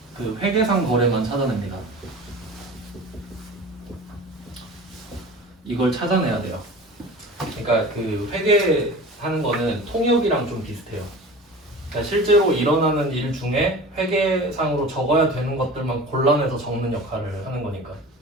그 회계상 거래만 찾아냅니다. 이걸 찾아내야 돼요. 그러니까 그 회계하는 거는 통역이랑 좀 비슷해요. 그러니까 실제로 일어나는 일 중에 회계상으로 적어야 되는 것들만 골라내서 적는 역할을 하는 거니까.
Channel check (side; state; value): both; normal; correlation 0.37